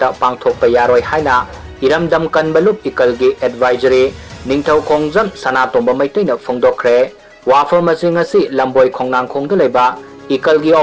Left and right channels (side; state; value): both; identical; correlation 1.00